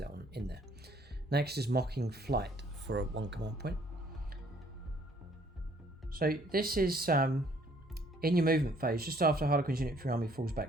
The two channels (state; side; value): normal; both; correlation 0.62